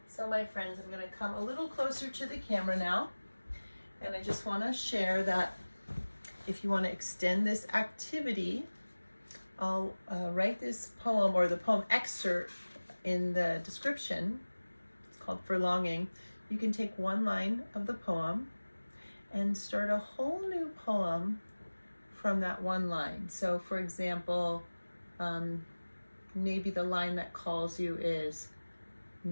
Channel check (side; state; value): both; inverted; correlation -1.00